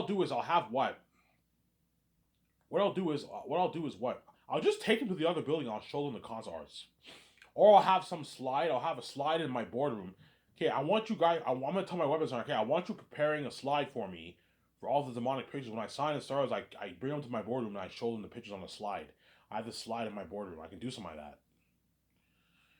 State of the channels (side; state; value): both; identical; correlation 1.00